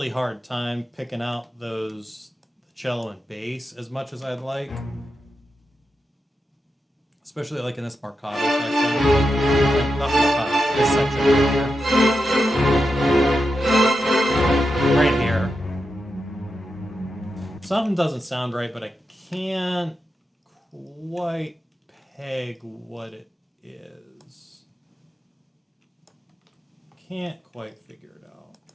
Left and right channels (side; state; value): both; normal; correlation 0.88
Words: hard time picking out those cello and bass as much as I'd like. Especially like in this marcato section. Like, not marcato, this section right here. Right here. Something doesn't sound right, but I can't quite peg what it is. can't quite figure it out.